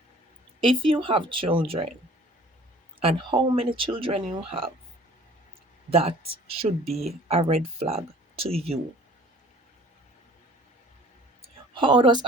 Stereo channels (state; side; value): normal; both; correlation 0.50